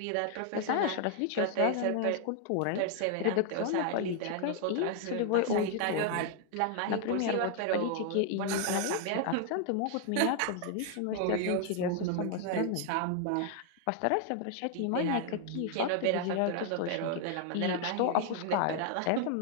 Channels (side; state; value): both; different; correlation 0.00